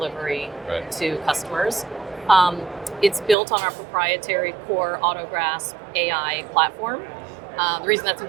to customers. It's built on our proprietary core AutoGrasp AI platform. The reason that's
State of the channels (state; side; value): drops out; left; at 3.4 s